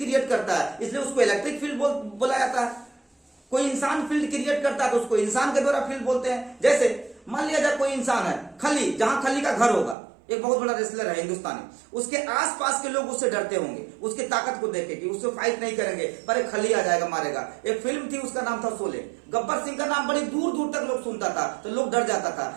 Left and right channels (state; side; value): drops out; left; at 10.0 s